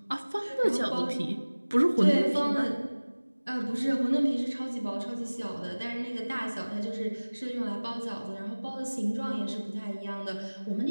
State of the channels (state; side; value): inverted; both; correlation -1.00